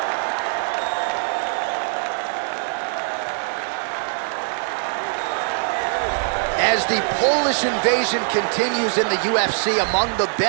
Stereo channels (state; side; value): silent; left; digital silence